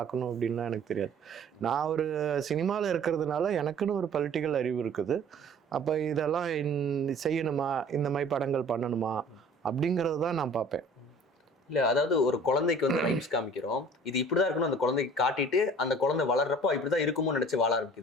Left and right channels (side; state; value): both; normal; correlation 0.49